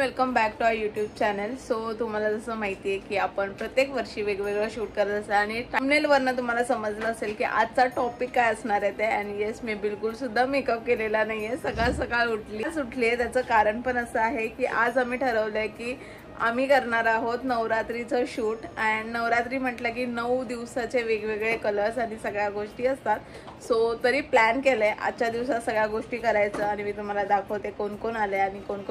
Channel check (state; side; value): identical; both; correlation 1.00